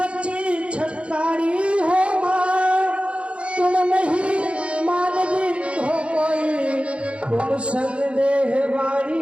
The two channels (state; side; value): late; left; 0.059 ms